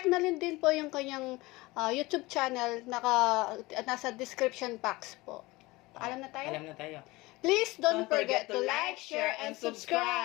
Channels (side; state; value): right; quieter; 21.4 dB